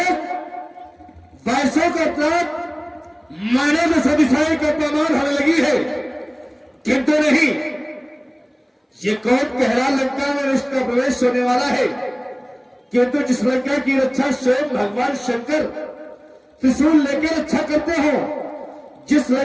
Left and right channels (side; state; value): both; identical; correlation 1.00